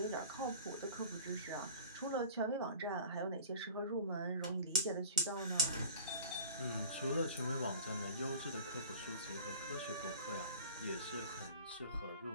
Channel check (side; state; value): both; inverted; correlation -0.43